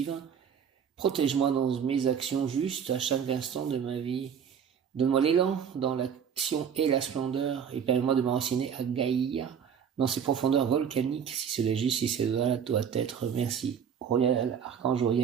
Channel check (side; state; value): left; quieter; 7.7 dB